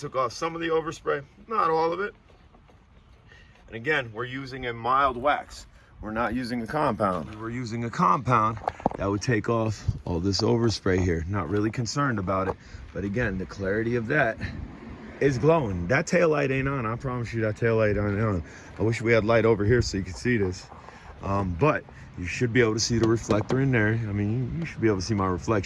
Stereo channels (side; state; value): both; identical; correlation 1.00